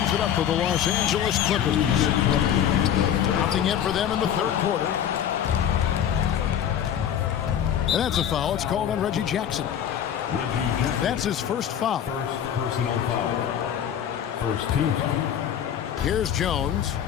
it up for the Los Angeles Clippers. Nothing in for them in the third quarter. And that's a foul. It's called on Reggie Jackson. That's his first foul. First personal foul. First team foul. Here's Jones.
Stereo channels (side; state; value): right; quieter; 9.5 dB